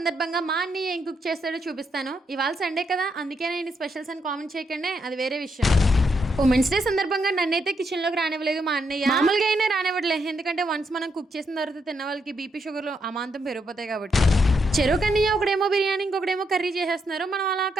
మా అన్నయ్య ఏం కుక్ చేస్తాడో చూపిస్తాను. ఇవాళ సండే కదా, అందుకే నేను స్పెషల్స్ అని కామెంట్ చేయకండి, అది వేరే విషయం. ఉమెన్స్ డే సందర్భంగా నన్నైతే కిచెన్ లోకి రానివ్వలేదు మా అన్నయ్య. మామూలుగా అయినా రానివ్వట్లేదు, ఎందుకంటే వన్స్ మనం కుక్ చేసిన తర్వాత తిన్న వాళ్ళకి బీపీ షుగర్లు అమాంతం పెరిగిపోతాయి కాబట్టి. చెరువు కన్నయ్య ఒకడేమో బిర్యానీ, ఇంకొకడేమో కర్రీ చేసేస్తున్నారు. మనం అలా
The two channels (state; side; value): normal; both; correlation 0.79